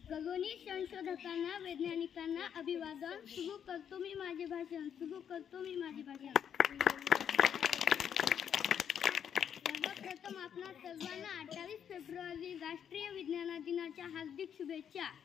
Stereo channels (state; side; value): quieter; right; 8.5 dB